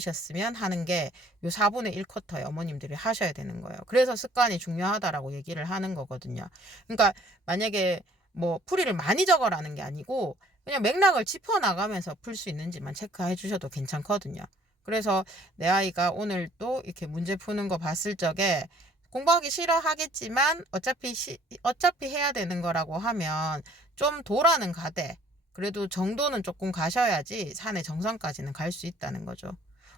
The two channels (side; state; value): both; normal; correlation 0.57